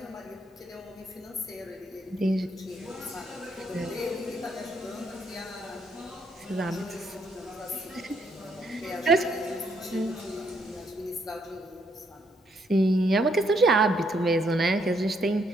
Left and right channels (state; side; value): normal; both; correlation 0.73